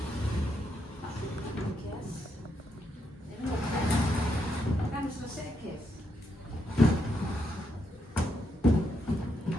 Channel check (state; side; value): normal; both; correlation 0.79